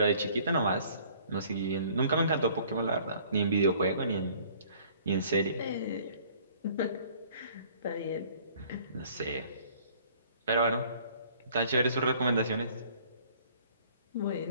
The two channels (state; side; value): inverted; both; correlation -0.55